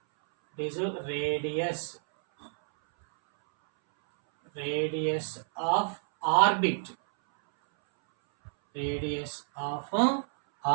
this is radius of orbit, radius of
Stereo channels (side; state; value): left; silent; 58 dB below the other